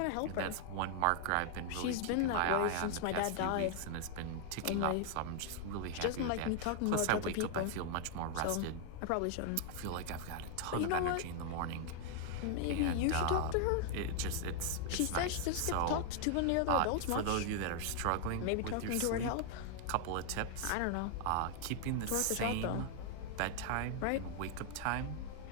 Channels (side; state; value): both; different; correlation 0.00